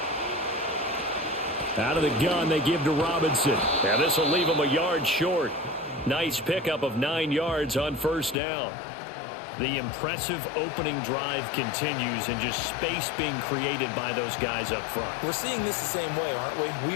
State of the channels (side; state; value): right; drops out; at 8.3 s